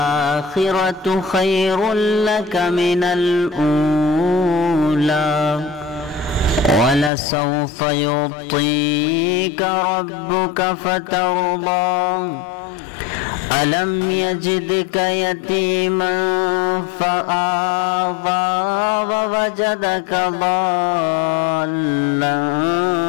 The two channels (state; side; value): drops out; right; at 7.1 s